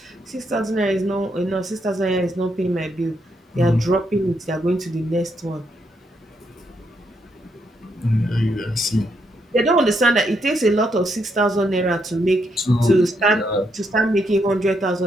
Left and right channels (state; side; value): normal; both; correlation 0.77